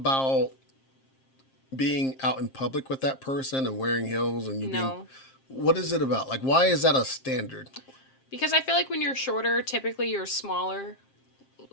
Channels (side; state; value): right; late; 7.5 ms